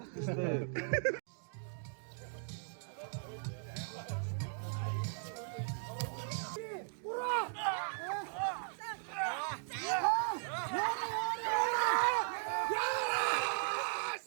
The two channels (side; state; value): left; silent; digital silence